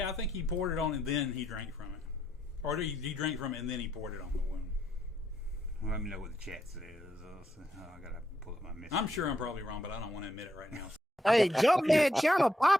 I think he poured it on and then he drank from it, or he drank from it and then he poured it on the wound. Let me know what the chat says. I gotta pull up my message. I'm sure I'm probably wrong, but I don't want to admit it right now. Hey, Junkman channel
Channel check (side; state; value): both; normal; correlation 0.77